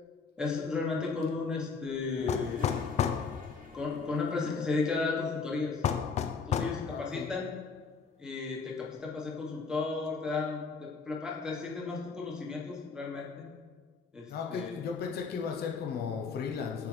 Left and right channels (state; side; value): quieter; right; 4.9 dB